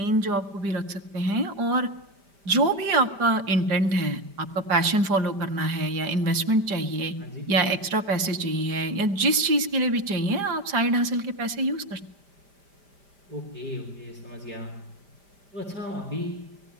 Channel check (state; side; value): late; left; 5.0 ms